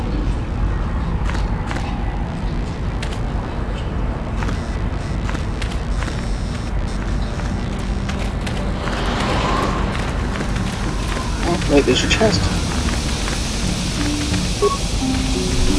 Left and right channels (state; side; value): identical; both; correlation 1.00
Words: Wait, there's a chest.